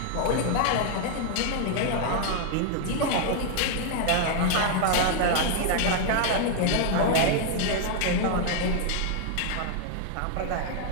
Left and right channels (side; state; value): both; different; correlation 0.00